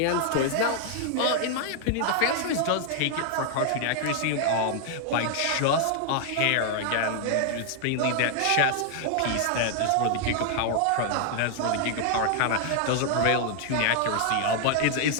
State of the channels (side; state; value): both; different; correlation 0.00